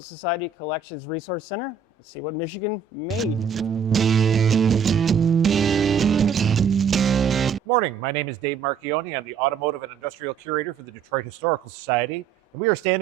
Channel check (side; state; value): left; quieter; 6.6 dB